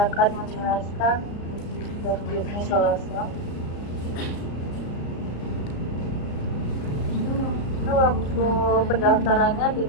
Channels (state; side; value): late; right; 34 ms